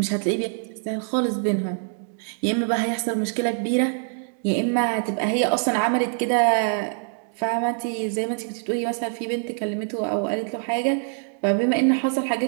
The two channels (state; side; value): silent; left; digital silence